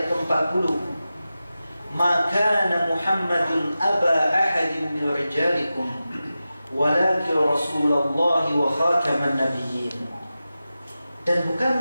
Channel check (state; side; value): inverted; both; correlation -0.93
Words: ke-40, "Ma kana Muhammadun aba ahadin min rijalikum walakin Rasulullah wa khataman nabiyyin." Dan